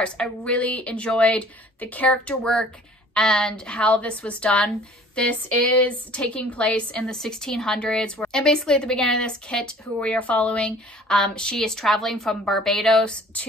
I really enjoyed the character work and how this was done. This is taking place in the 1600s, and basically at the beginning of this, Kit, who we are following, she is traveling from Barbados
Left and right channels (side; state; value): both; normal; correlation 0.51